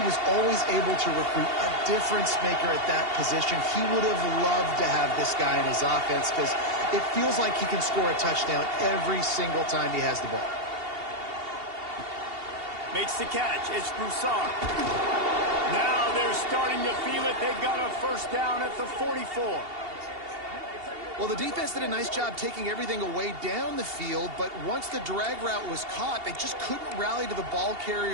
was always able to recruit a difference maker at that position. He would have loved to have this guy in his offense because it feels like he can score a touchdown every single time he has the ball. Makes the catch. It's Broussard. Now they're starting to feel it. They've got a first down at the 44. Well, the defense did a nice job taking everything away down the field, but once the drag route was caught, they just couldn't rally to the ball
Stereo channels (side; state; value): left; late; 2.8 ms